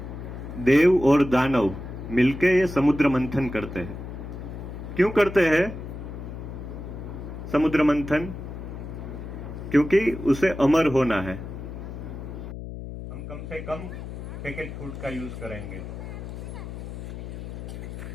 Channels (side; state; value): left; noise; hum, 9 dB below the sound